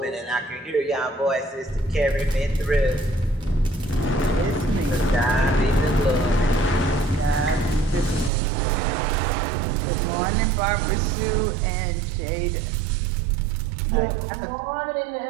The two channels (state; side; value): drops out; left; at 8.3 s